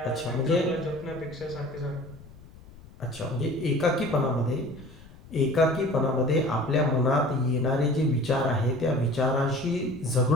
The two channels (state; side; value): noise; left; rumble, 21 dB below the sound